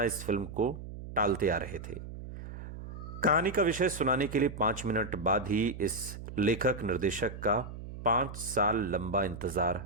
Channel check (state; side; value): noise; right; hum, 11 dB below the sound